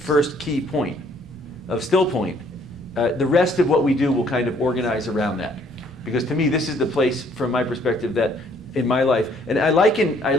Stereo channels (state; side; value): normal; both; correlation 0.63